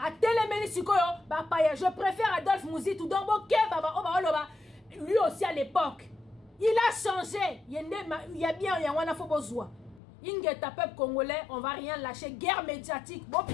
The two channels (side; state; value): right; drops out; at 10.0 s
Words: A je préfère Adolphe Mozitu. Donc, lui aussi à l'époque, il a changé. Il y a bien, il y a un besoin. Il y a un peuple congolais, on va rien lâcher. Guerre médiatique. Bon,